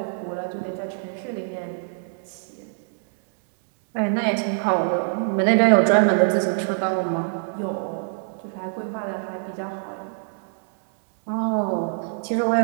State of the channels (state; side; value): silent; left; digital silence